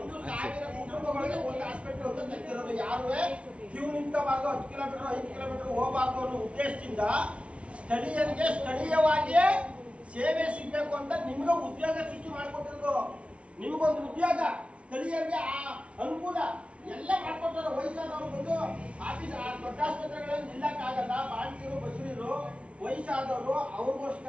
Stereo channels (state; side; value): late; left; 0.061 ms